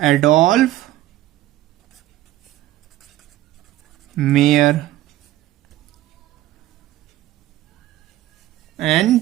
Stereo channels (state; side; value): quieter; left; 14.8 dB